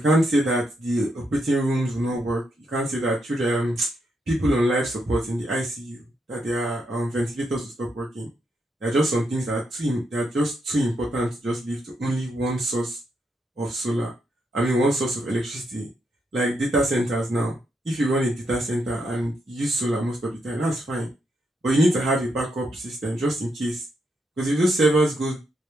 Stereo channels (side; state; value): both; normal; correlation 0.80